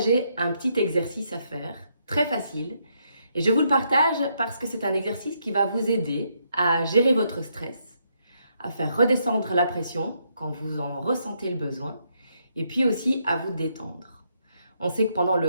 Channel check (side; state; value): both; inverted; correlation -0.76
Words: un petit exercice à faire, très facile. Et je vous le partage parce que c'est un exercice qui va vous aider à gérer votre stress, à faire redescendre la pression quand vous en ressentez le besoin, et puis aussi à vous détendre. On sait que pendant